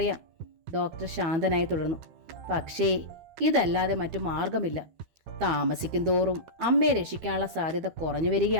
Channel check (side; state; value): left; late; 13 ms